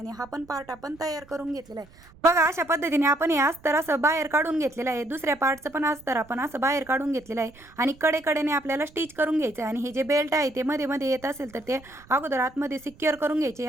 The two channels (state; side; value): noise; right; rumble, 25 dB below the sound